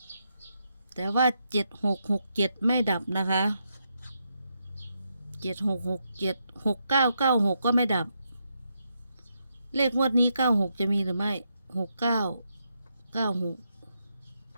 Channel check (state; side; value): inverted; both; correlation -0.81